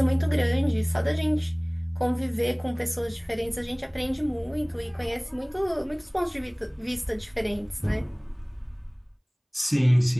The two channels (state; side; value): identical; both; correlation 1.00